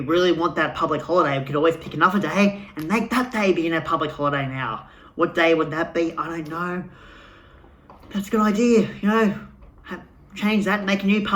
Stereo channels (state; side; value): identical; both; correlation 1.00